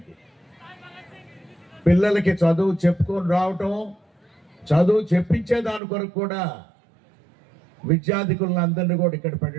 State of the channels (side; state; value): left; drops out; at 5.8 s